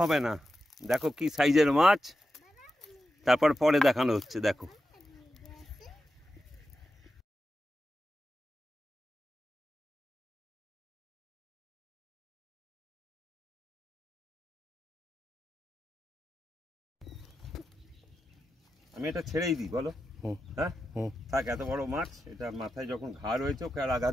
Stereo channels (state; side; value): normal; both; correlation 0.90